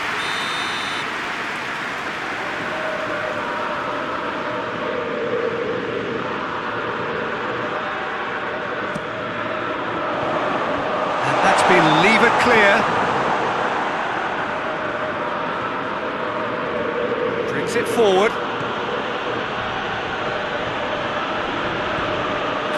And that's been levered clear. It forward.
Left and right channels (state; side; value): identical; both; correlation 1.00